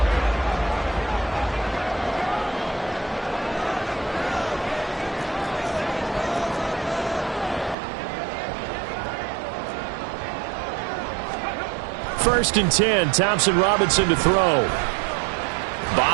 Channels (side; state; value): left; drops out; at 7.8 s